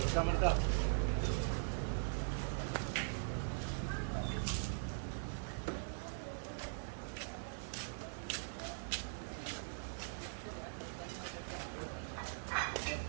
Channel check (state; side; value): silent; left; digital silence